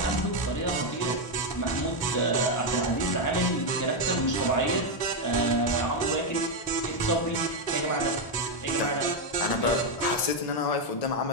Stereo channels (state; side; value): late; right; 1.1 ms